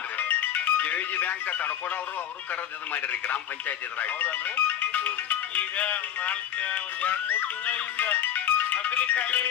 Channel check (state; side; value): quieter; right; 10.3 dB